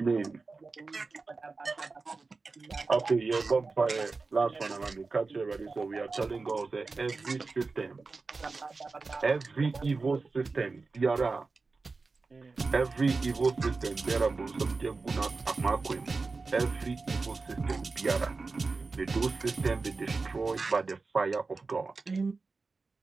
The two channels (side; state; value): left; quieter; 4.0 dB